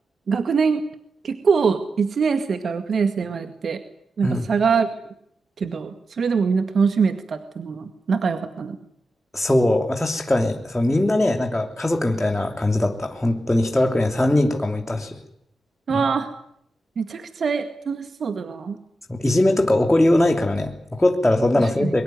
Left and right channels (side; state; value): both; normal; correlation 0.91